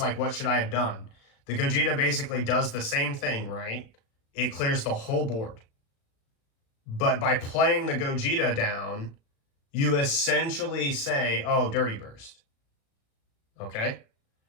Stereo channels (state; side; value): late; right; 36 ms